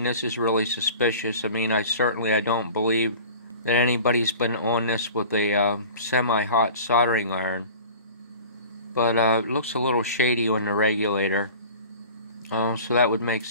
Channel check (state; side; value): inverted; both; correlation -0.41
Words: is really suspicious. I don't believe that anybody's been on this with a semi-hot soldering iron. But it looks a little shady on the regulator. So that would make